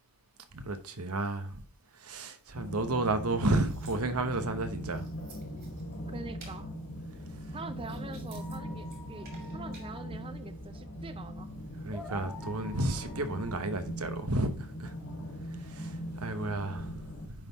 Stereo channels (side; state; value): both; normal; correlation 0.45